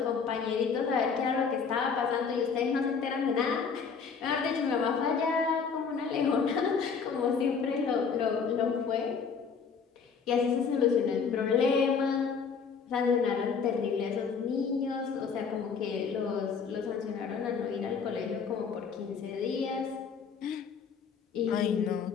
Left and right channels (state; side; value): quieter; right; 5.9 dB